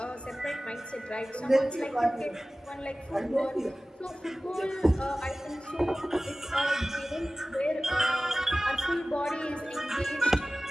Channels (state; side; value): normal; both; correlation 0.97